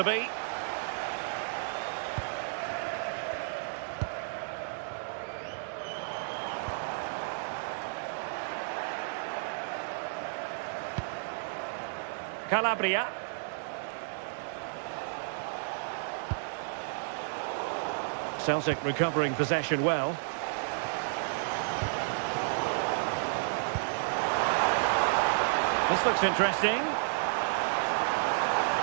be. Calabria. Celtic recovering possession well. This looks interesting.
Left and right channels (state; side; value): silent; left; digital silence